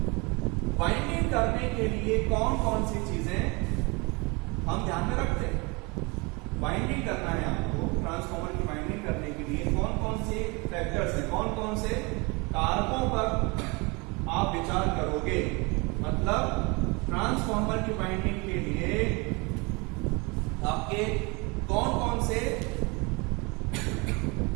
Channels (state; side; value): quieter; left; 27.9 dB